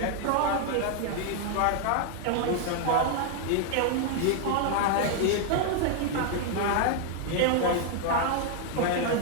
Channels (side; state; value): both; different; correlation 0.00